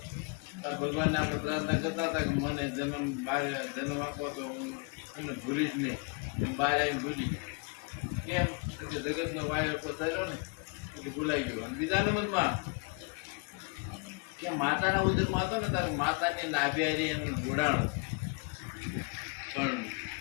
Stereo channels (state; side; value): quieter; right; 32.4 dB